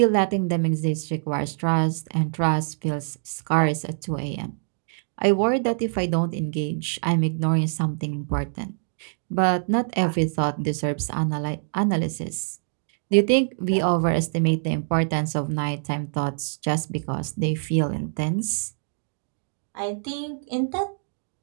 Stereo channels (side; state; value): left; silent; digital silence